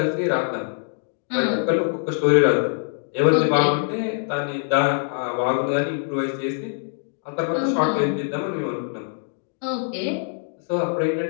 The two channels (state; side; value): silent; right; digital silence